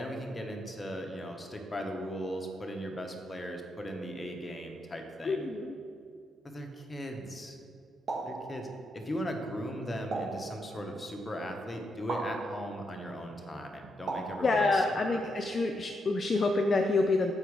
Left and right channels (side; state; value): both; normal; correlation 0.81